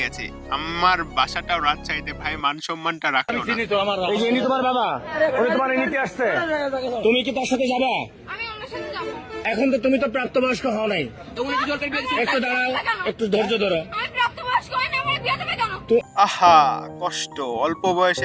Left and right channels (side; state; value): both; identical; correlation 1.00